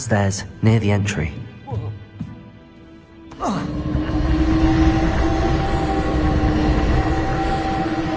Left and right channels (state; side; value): identical; both; correlation 1.00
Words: near the entry.